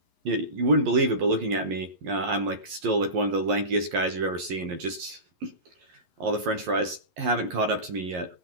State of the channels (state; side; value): late; left; 11 ms